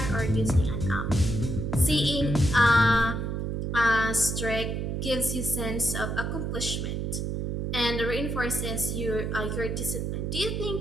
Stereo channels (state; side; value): noise; right; hum, 2 dB below the sound